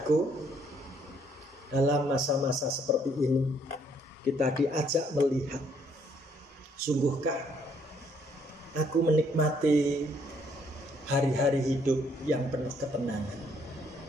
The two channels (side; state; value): both; normal; correlation 0.67